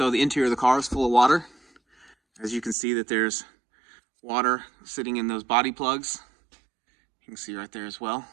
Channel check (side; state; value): left; drops out; at 2.8 s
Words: the interior of the car is full of water. As you can see that there's water sitting in those body plugs. You can see right there as well.